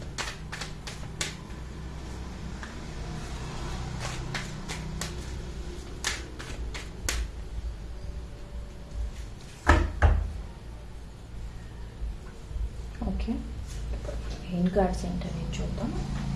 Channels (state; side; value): identical; both; correlation 1.00